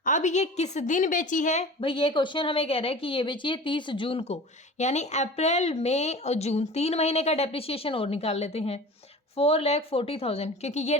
अब ये किस दिन बेची है भाई? ये क्वेश्चन हमें कह रहा है कि ये बेची है 30 जून को, यानी अप्रैल मई और जून 3 महीने का डेप्रिसिएशन और निकाल लेते हैं। 4,40,000 क्योंकि ये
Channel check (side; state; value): both; normal; correlation 0.38